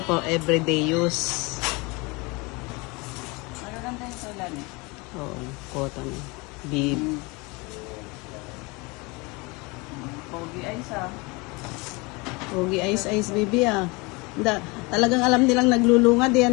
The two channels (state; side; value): quieter; right; 26.6 dB